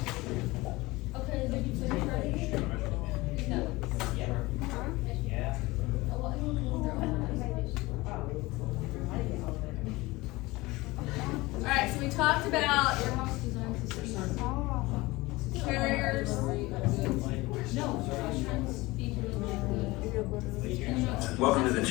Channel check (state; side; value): quieter; right; 21.1 dB